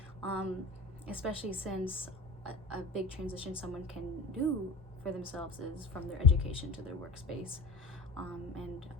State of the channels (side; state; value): right; quieter; 3.1 dB